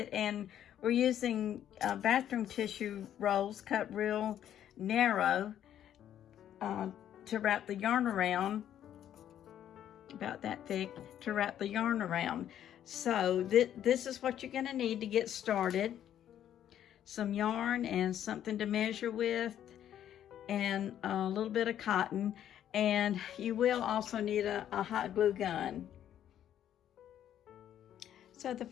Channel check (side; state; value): right; quieter; 10.6 dB